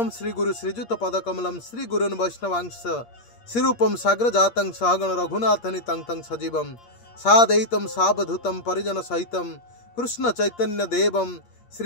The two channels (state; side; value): late; right; 8.5 ms